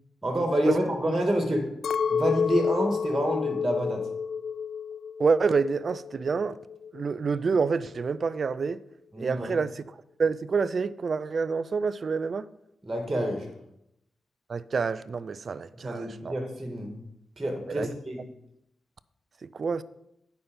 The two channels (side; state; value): both; normal; correlation 0.87